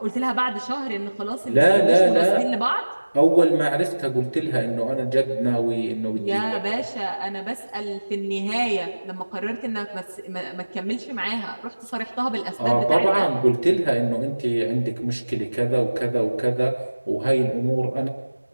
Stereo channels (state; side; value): inverted; both; correlation -1.00